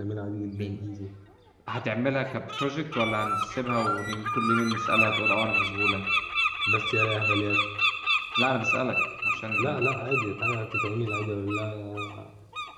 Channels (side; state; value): both; identical; correlation 1.00